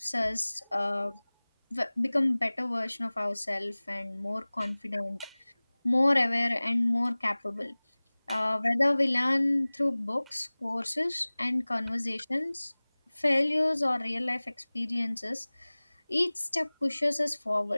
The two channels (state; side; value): inverted; both; correlation -1.00